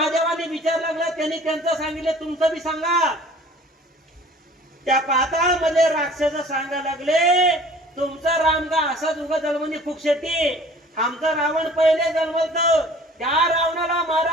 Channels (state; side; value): normal; both; correlation 0.49